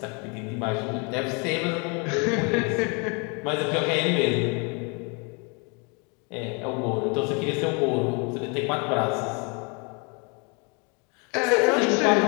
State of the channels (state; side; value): quieter; right; 33.2 dB